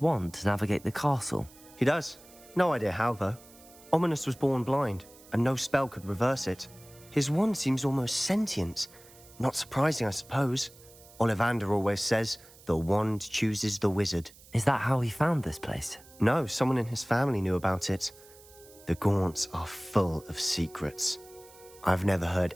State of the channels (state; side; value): noise; right; hiss, 23 dB below the sound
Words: to navigate the castle. He does. No idea how, though. Ominous was born blind, and no spell could reverse it. His wand seems almost sentient. Not surprising, I suppose. Ollivander always says, the wand chooses the wizard. Is that how he found this place? No, someone in his family knew about it. The Gaunts are full of secrets. I've never heard